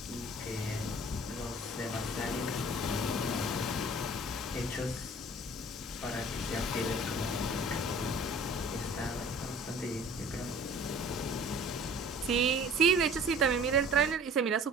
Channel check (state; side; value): normal; both; correlation 0.47